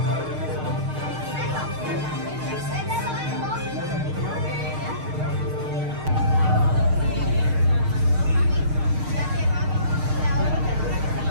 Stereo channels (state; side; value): late; left; 6.5 ms